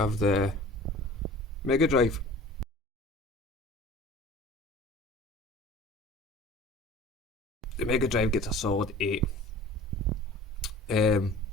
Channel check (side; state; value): both; normal; correlation 0.44